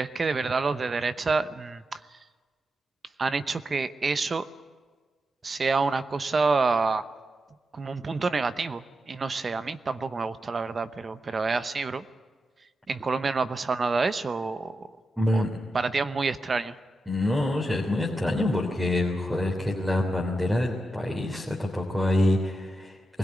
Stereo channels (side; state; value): both; normal; correlation 0.89